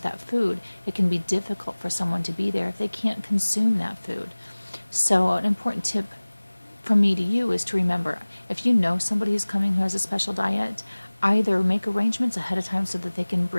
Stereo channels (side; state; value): both; inverted; correlation -1.00